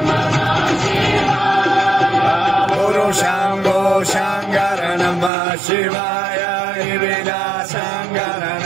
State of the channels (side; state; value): left; drops out; at 5.3 s